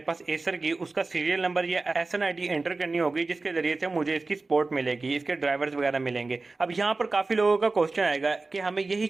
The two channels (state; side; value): quieter; left; 3.6 dB